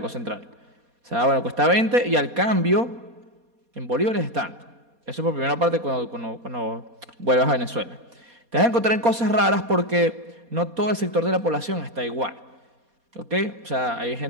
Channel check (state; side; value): late; left; 4.2 ms